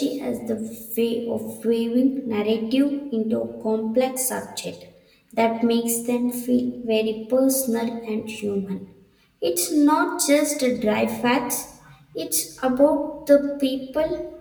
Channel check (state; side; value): identical; both; correlation 1.00